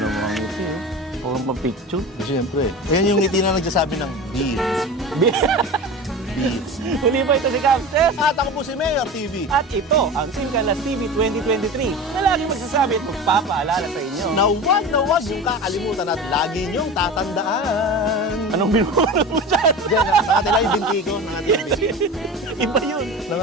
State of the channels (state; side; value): normal; both; correlation 0.31